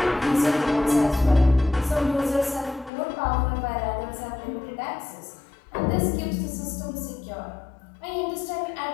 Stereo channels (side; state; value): right; drops out; at 2.9 s